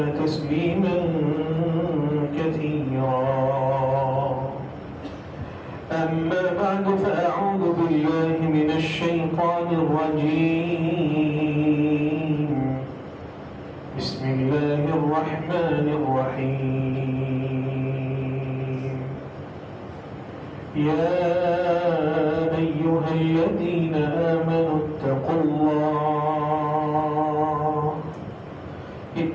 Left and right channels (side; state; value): both; identical; correlation 1.00